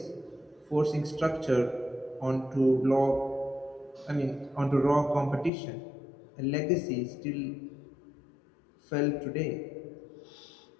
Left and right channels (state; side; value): drops out; right; at 5.5 s